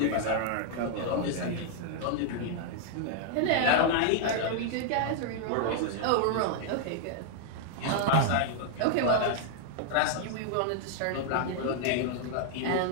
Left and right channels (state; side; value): different; both; correlation -0.01